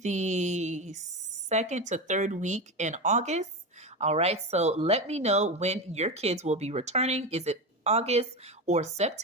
the 2nd to 3rd week in August. All right, so let me know when your kids will be returning. Is it August or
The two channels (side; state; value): both; normal; correlation 0.19